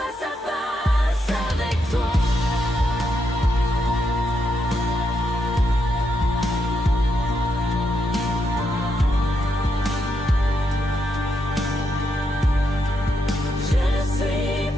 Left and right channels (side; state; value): both; normal; correlation 0.81